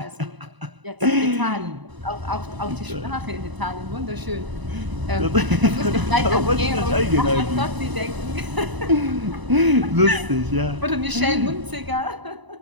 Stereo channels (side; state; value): left; late; 1.0 ms